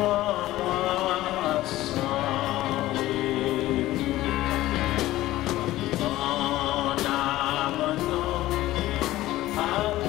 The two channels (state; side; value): quieter; right; 16.1 dB